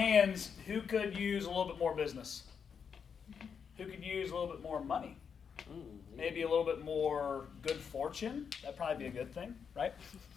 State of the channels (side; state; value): right; quieter; 6.7 dB